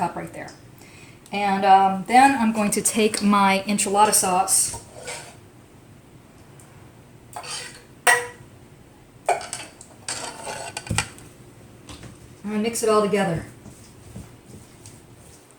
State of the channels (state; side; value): identical; both; correlation 1.00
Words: right there. And then I'm going to take my enchilada sauce. I'm going to mix it all together.